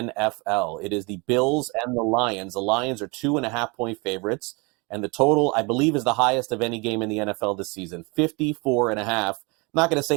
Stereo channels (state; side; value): quieter; left; 28.6 dB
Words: It is the Bills and the Lions. The Lions are 2.5 point favorites, and the total, I believe, is the highest of any game in the NFL this season, 54.5. I'm not going to say